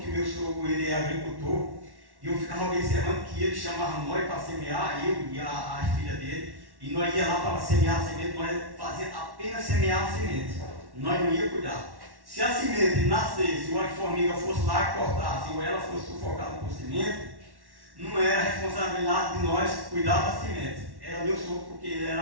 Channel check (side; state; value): left; late; 1.1 ms